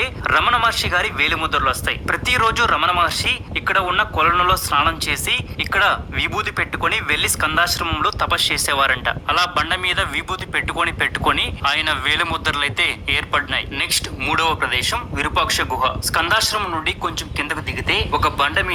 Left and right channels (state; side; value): identical; both; correlation 1.00